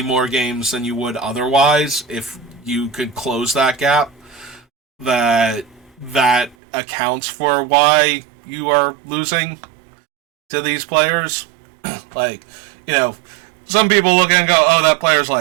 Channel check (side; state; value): left; drops out; at 6.6 s